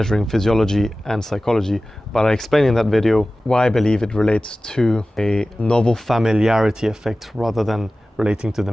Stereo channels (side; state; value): both; normal; correlation 0.96